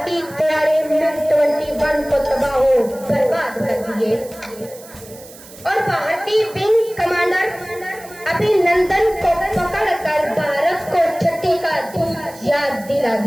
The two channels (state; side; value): noise; right; hiss, 19 dB below the sound